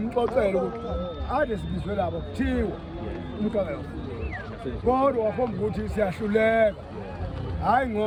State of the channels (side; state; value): both; identical; correlation 1.00